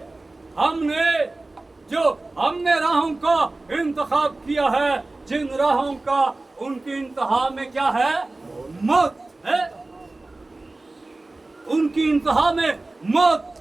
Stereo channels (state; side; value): quieter; left; 3.0 dB